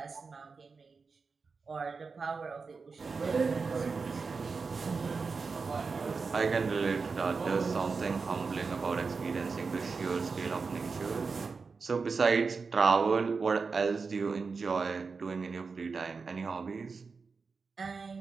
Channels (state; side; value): quieter; left; 4.7 dB